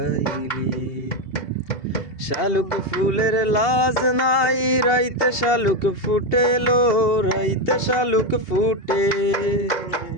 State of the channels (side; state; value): right; late; 2.8 ms